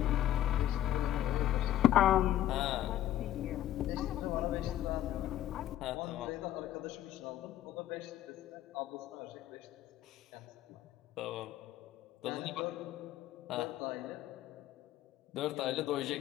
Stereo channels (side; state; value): right; quieter; 12.5 dB